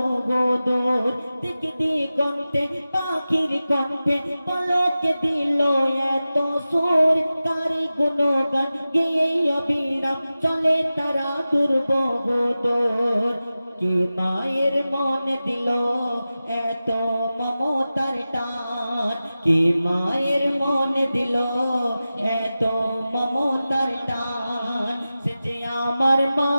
দূর। দিক দিগন্তে পাখির কণ্ঠে পলকে দিল এত সুর, কার গুণগান গেয়ে অবিরাম চলে তারা দুর্বহ দূর। কি মায়ের মনে দিল এত মমতার টান, কি মায়ের মনে দিল এত মমতার টান। সে যে আমার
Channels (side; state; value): both; inverted; correlation -0.95